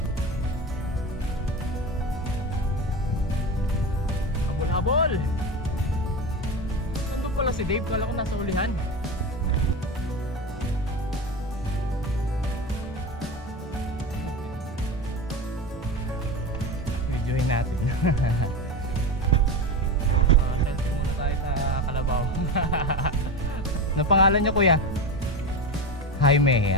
Habol! Nandun pala si Dave, kala ko nasa ulihan. Videoin natin. Selfie muna tayo sa Kalabaw. Ano pangalan niyo, kuya? Jaime,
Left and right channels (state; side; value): normal; both; correlation 0.23